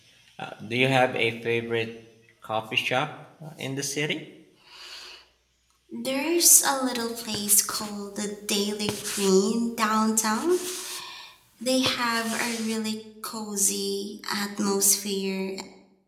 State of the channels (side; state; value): both; identical; correlation 1.00